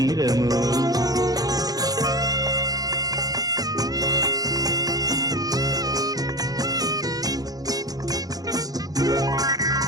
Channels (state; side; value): late; left; 0.18 ms